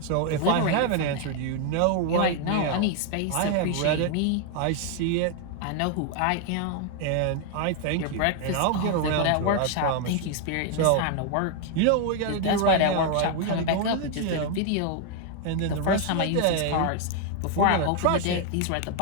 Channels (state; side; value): different; both; correlation 0.00